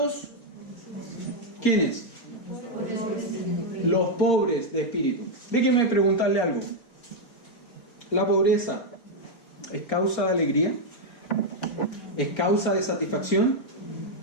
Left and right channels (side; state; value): right; late; 4.4 ms